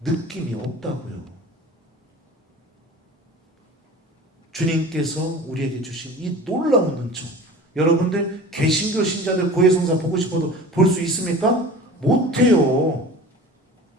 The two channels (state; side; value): normal; both; correlation 0.39